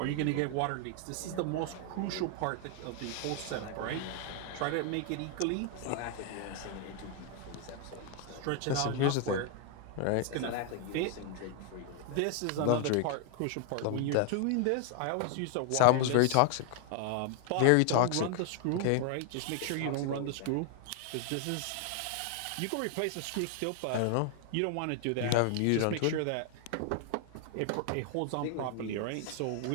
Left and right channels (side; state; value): both; different; correlation 0.00